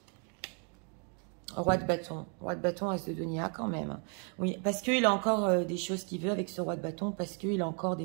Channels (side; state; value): left; quieter; 38.6 dB